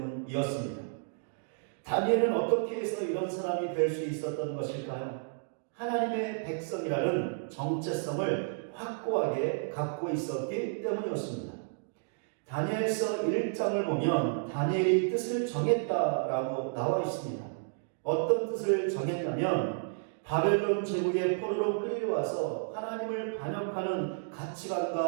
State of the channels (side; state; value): left; silent; digital silence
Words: 다니엘은 어떻게 해서 이런 사람이 될 수 있었던 것일까요? 하나님의 백성이라는 정체성을 확고하게 갖고 있었기 때문이었습니다. 다니엘서 1장을 보면 다니엘이 뜻을 정했다라고 나와 있습니다. 어떤 뜻을 정했냐면 바벨론 제국의 포로로 끌려와서 하나님을 반역하는